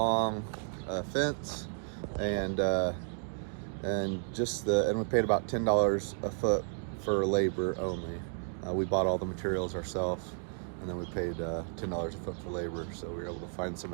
fence, and we paid about $10 a foot for labor only. We bought all the materials ourselves, and then we paid $10 a foot for labor. So we were able to find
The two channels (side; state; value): left; silent; 56 dB below the other